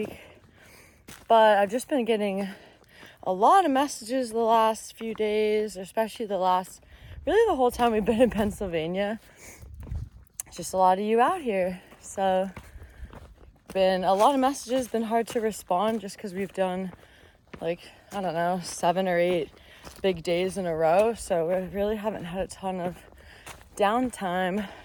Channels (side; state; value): both; identical; correlation 1.00